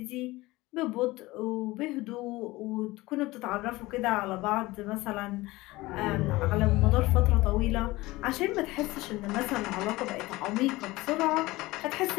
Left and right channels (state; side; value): quieter; right; 20.0 dB